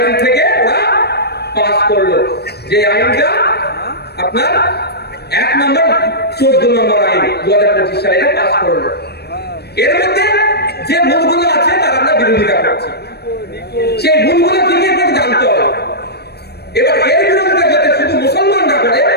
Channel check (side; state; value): right; late; 0.47 ms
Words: থেকে ওরা পাস করলো, যে আইনটা আপনার 1 নম্বর 14 নম্বর আইন 2025 সালে পাস করলো। এর মধ্যে যে ভুলগুলো আছে তার আমরা বিরোধিতা করছি, সেই ভুলগুলো কি কি করে জানতে হবে। এবার এর বিরোধিতা যাতে শুধু মুসলমানরা করে,